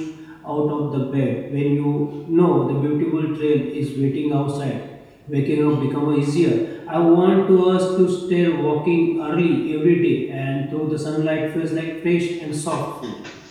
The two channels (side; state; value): both; identical; correlation 1.00